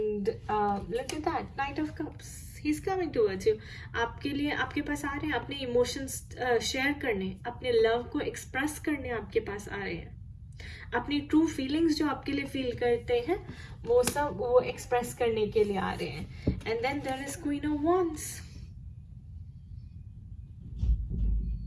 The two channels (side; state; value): both; identical; correlation 1.00